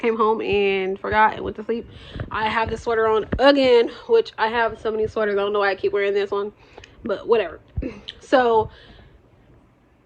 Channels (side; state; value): both; identical; correlation 1.00